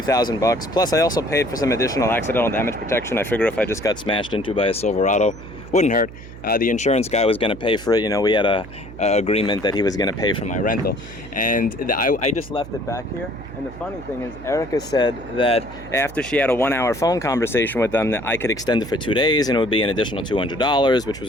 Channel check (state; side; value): noise; right; hum, 15 dB below the sound